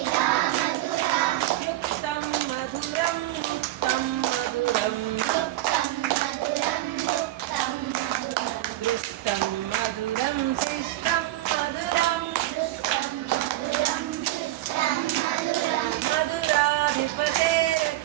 యుక్తం మధురం ముక్తం మధురం దృష్టం మధురం శిష్టం మధురం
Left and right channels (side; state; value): left; quieter; 15.7 dB